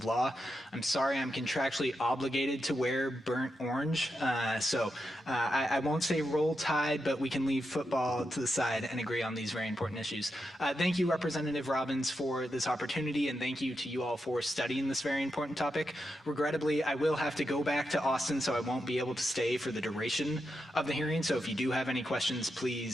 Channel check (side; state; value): both; normal; correlation 0.86